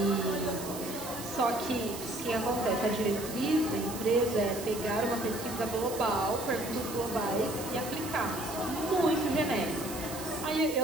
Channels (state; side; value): noise; right; hiss, 10 dB below the sound